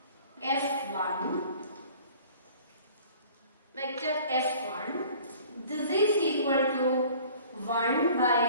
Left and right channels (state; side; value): inverted; both; correlation -0.49